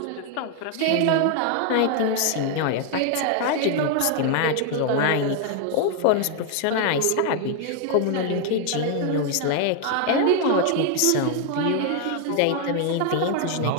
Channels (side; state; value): both; different; correlation 0.00